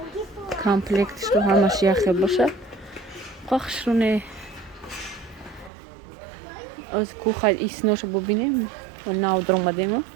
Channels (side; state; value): left; drops out; at 5.7 s